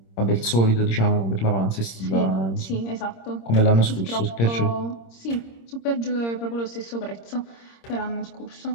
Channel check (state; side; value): late; right; 26 ms